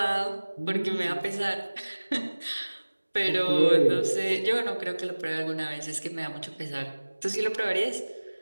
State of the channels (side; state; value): both; inverted; correlation -1.00